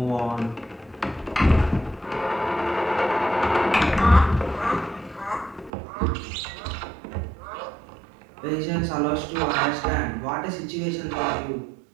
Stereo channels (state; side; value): drops out; left; at 5.7 s